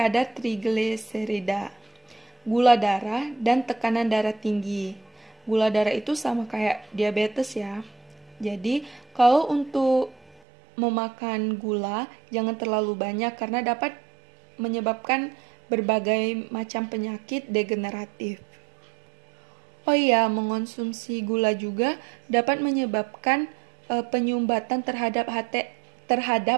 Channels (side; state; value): left; drops out; at 10.4 s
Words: trigliserida, gula darah, dan tekanan darah tinggi. Gula darah itu sama kayak diabetes ya. Jadi, kalau untuk memakan gula, jangan terlalu banyak karena dapat menyebabkan berbagai macam penyakit degeneratif. Oh iya, mengonsumsi gula juga dapat menyebabkan penyumbatan terhadap